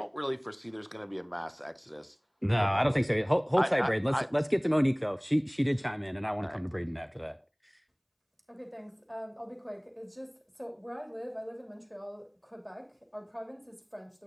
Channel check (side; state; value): both; identical; correlation 1.00